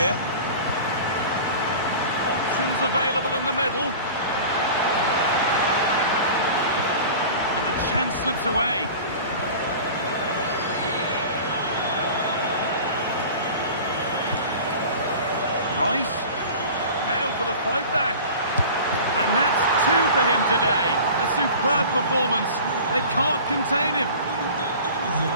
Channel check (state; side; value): inverted; both; correlation -0.39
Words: Options available in the middle. And the chance slips away. Rice, now for the fight back. And that's 2 for him today. A superb performance. They can't contain him.